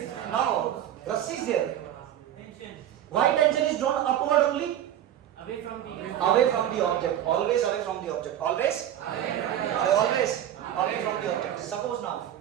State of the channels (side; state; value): left; quieter; 11.2 dB